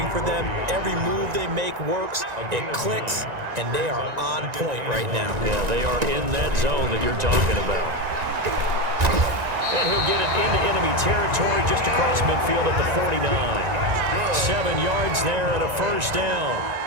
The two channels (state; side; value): late; left; 1.9 ms